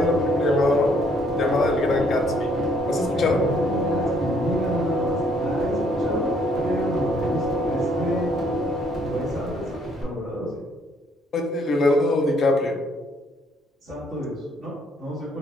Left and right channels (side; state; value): both; normal; correlation 0.66